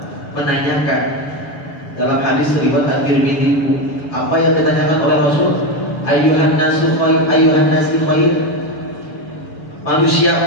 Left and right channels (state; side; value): late; right; 7.0 ms